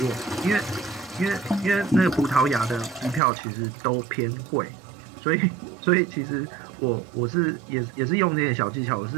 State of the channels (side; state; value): left; drops out; at 3.2 s